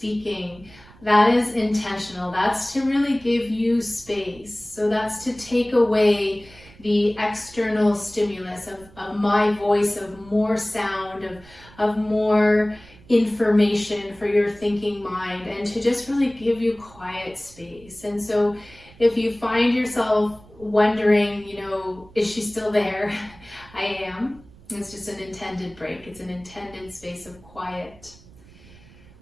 That is intentional. That's to really give you space. So that's to take away the external stimulus of my voice, of more sound, of more information for your thinking mind, and to just really give you quiet space. And so if you find yourself wondering, is she still there? I am. It's just an intended break. It's an intended space of quiet.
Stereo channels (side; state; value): right; noise; rumble, 23 dB below the sound